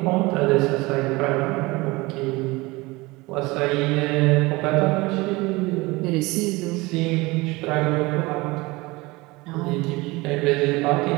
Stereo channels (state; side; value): quieter; left; 22.6 dB